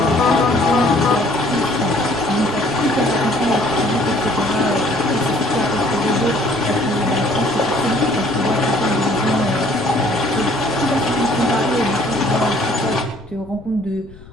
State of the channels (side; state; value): left; noise; rumble, 21 dB below the sound